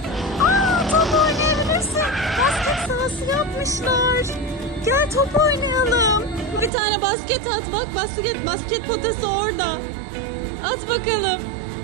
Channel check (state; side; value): drops out; left; at 6.7 s